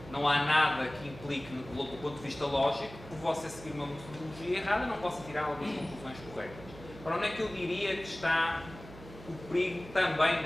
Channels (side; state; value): right; noise; hum, 16 dB below the sound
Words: não há nada que implique, do ponto de vista lógico, por você seguir uma metodologia errada, não possa tirar algumas conclusões corretas. Ora, onde é que eu diria que está o perigo também